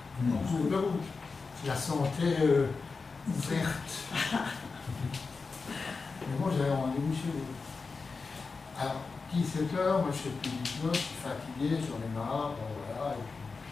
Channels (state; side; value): quieter; right; 4.4 dB